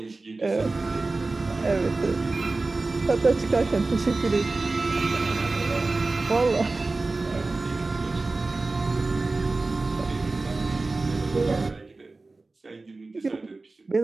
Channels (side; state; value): left; quieter; 3.4 dB